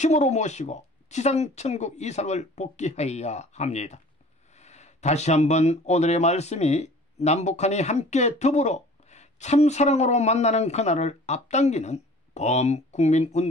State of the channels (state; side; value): normal; both; correlation 0.47